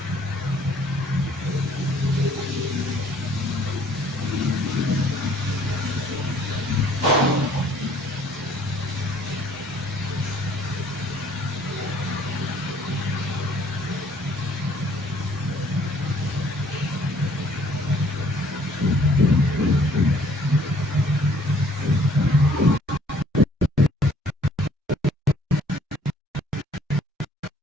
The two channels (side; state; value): both; normal; correlation 0.59